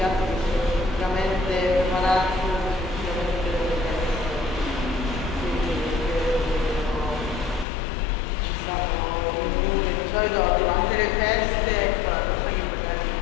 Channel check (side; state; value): right; drops out; at 7.7 s